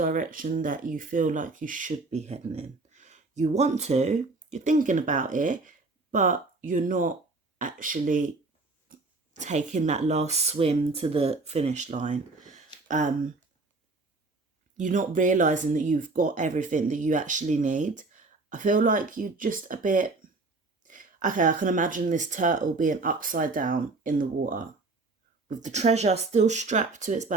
that you feel like you should be heading in. You want to, you're thinking about it, but you're not actually taking that last swim to the finish line. You're not realising that you've got everything that you actually need. I feel like you're just a bit... Okay, I can imagine this turtle being upside down in the water with the treasure still strapped to its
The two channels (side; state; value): left; quieter; 3.5 dB